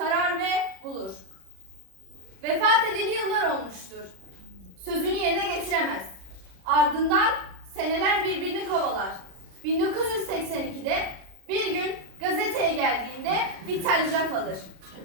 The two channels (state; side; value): late; left; 36 ms